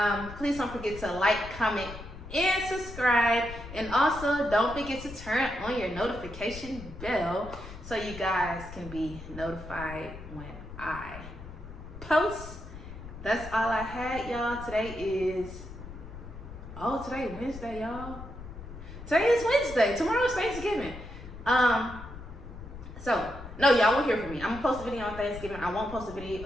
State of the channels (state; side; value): noise; left; rumble, 12 dB below the sound